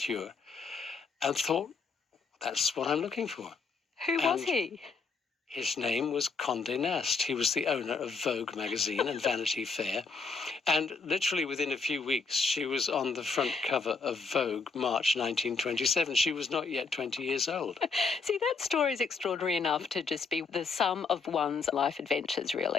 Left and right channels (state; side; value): quieter; right; 4.6 dB